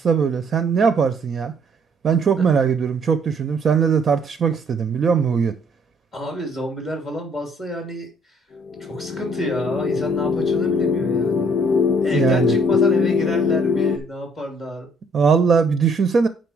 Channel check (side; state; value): both; normal; correlation 0.64